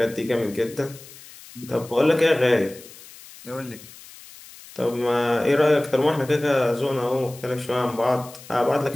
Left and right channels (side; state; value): left; noise; hiss, 19 dB below the sound